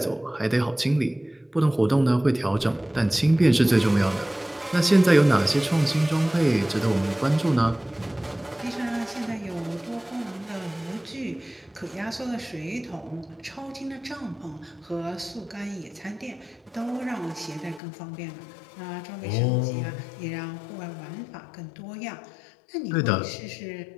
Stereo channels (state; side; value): drops out; right; at 17.8 s